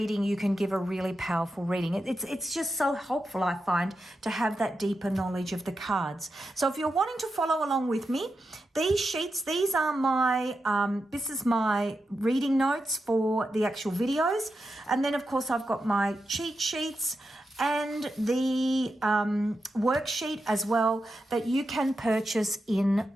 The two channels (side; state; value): both; normal; correlation 0.88